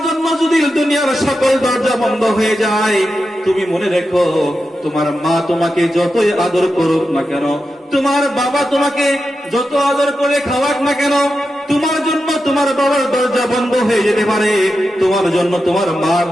জন্য যদি দুনিয়ার সকল দরজা বন্ধ হয়ে যায়, তুমি মনে রেখো, তোমার মা তোমাকে যতই আদর করুক না কেন, তোমার বাবা তোমাকে যত আদর করে খাওয়াক না কেন, তোমার জন্য তোমার বাবার দরজা বন্ধ হয়ে যেতে পারে, তোমার জন্য তোমার মার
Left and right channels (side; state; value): both; normal; correlation 0.89